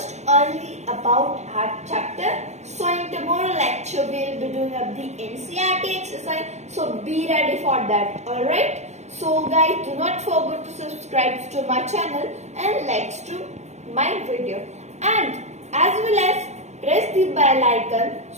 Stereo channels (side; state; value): left; late; 0.33 ms